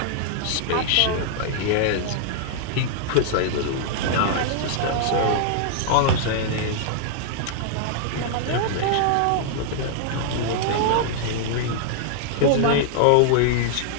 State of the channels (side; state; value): both; different; correlation -0.01